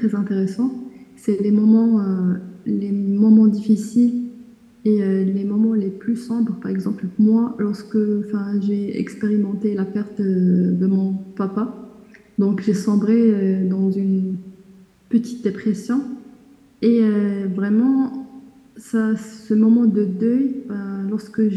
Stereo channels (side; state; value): both; identical; correlation 1.00